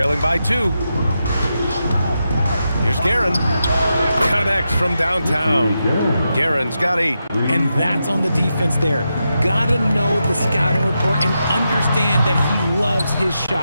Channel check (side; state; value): both; inverted; correlation -0.87